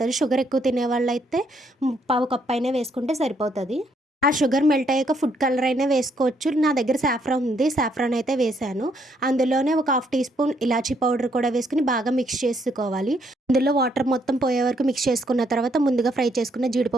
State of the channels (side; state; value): both; normal; correlation 0.71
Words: షుగర్ ఎక్కువ తినేవాళ్ళైతే పావు కప్ అయినా వేసుకుంటే సరిపోతది. ఆ షుగర్ మెల్ట్ అయ్యాక ఫుడ్ కలర్ అయినా వేసుకోవచ్చు. నా దగ్గర సాఫ్రాన్ ఉంది. సాఫ్రాన్ అయితే వేశాను. అందులోనే ఒక హాఫ్ టీ స్పూన్ ఇలాచీ పౌడర్ కూడా వేసుకొని బాగా మిక్స్ చేసుకోవాలి. అందులో వాటర్ మొత్తం పోయే వరకు మిక్స్ చేసుకున్న తర్వాత ముందుగా ఫ్రై చేసుకున్న